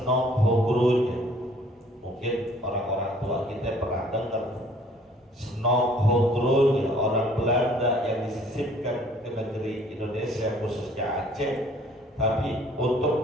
Hogronya. Mungkin orang-orang tua kita pernah dengar. Senok Hogronya, orang Belanda yang disisipkan ke negeri Indonesia, khususnya Aceh, tapi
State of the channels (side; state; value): both; normal; correlation 0.57